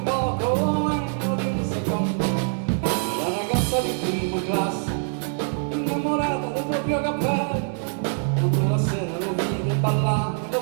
poco meno di un secondo. La ragazza di prima classe, innamorata del proprio cappello, quando la sera lo vide ballare, lo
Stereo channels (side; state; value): left; silent; 62 dB below the other